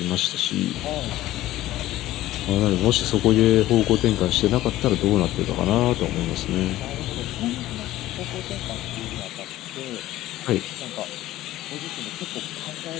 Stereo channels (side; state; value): right; quieter; 15.3 dB